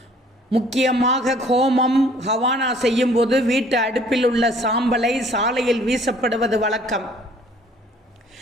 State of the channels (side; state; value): both; normal; correlation 0.57